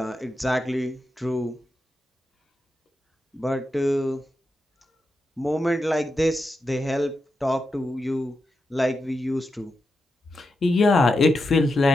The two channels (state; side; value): normal; both; correlation 0.87